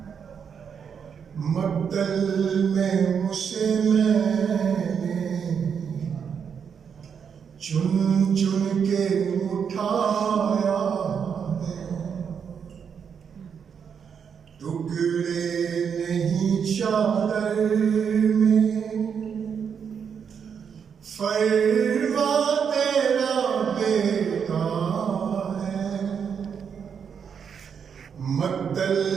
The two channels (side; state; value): left; quieter; 7.1 dB